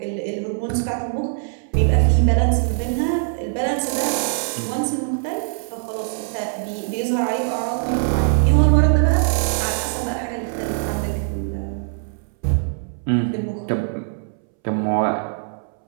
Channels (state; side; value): silent; left; 64 dB below the other